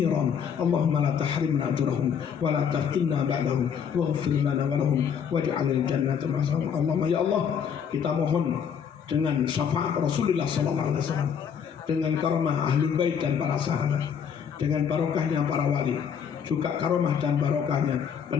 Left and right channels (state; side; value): quieter; right; 7.5 dB